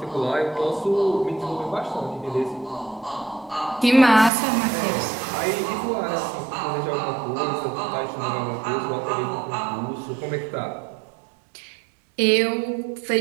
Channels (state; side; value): drops out; left; at 4.3 s